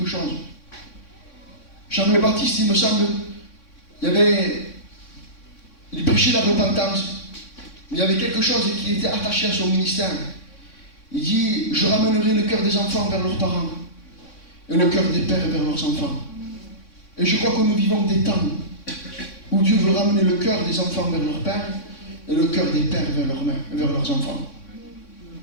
chose. Jean le Baptiste, il me semble, il prêchait la repentance, mais il y avait quelque chose qui était attaché à son ministère. Il dit, je ramènerai le cœur des enfants vers leurs parents, et le cœur des pères vers leurs enfants. Et je crois que nous vivons des temps où Dieu veut ramener le cœur des enfants vers leur père et le cœur des pères vers leurs enfants.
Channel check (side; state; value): right; late; 3.6 ms